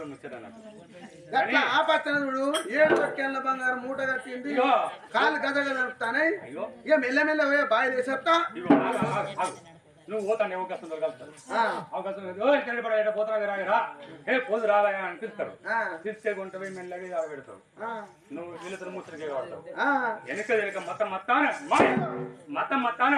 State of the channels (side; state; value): both; identical; correlation 1.00